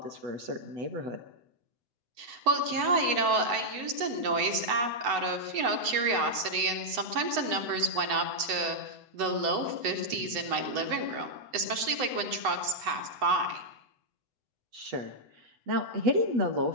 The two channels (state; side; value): late; left; 8.0 ms